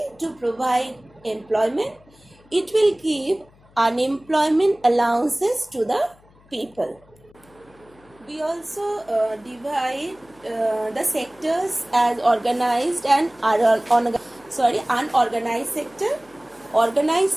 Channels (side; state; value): left; noise; hum, 29 dB below the sound